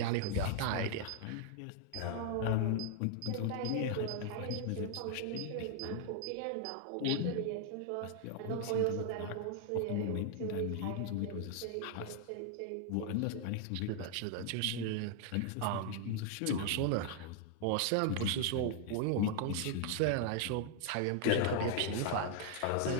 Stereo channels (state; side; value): different; both; correlation 0.00